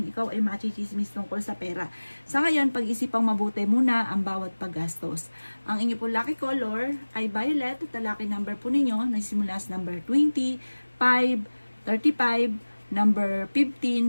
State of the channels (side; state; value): both; inverted; correlation -1.00